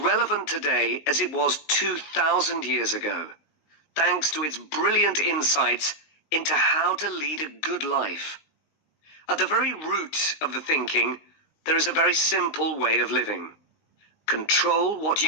today as it was 2,000 years ago, thanks to its brilliant insights into how to lead a good life. At the very root of the thinking, there is a very simple way of living. Control what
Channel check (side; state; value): right; late; 19 ms